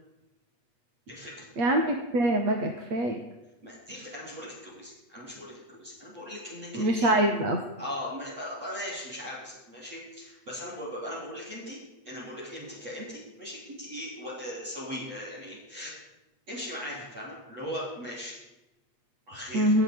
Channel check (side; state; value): left; late; 8.3 ms